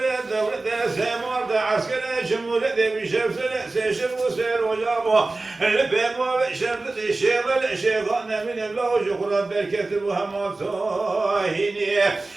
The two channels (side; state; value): left; quieter; 3.3 dB